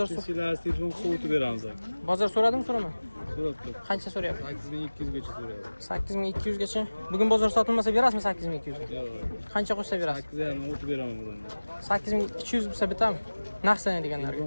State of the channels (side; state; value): both; inverted; correlation -1.00